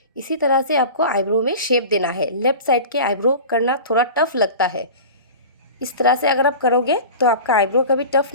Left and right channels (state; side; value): inverted; both; correlation -0.35